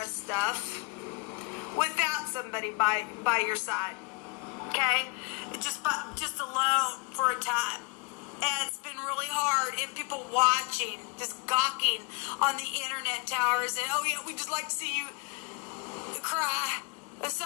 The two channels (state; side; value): quieter; right; 30.7 dB